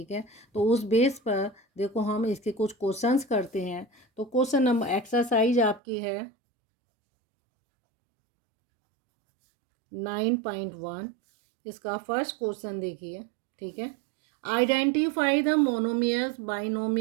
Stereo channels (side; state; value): left; drops out; at 5.8 s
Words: है, तो उस बेस पर देखो हम इसके कुछ क्वेश्चंस करते हैं। तो क्वेश्चन नंबर एक्सरसाइज आपकी है 9.1। इसका फर्स्ट क्वेश्चन देखिए। ठीक है, identify the monomials,